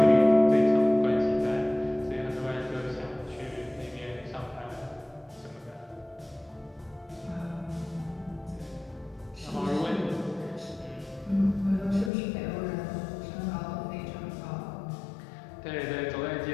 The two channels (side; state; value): right; drops out; at 12.1 s